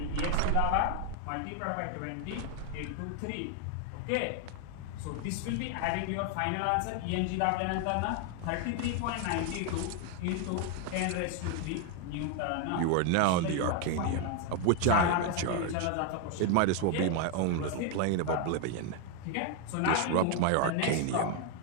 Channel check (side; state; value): both; different; correlation 0.01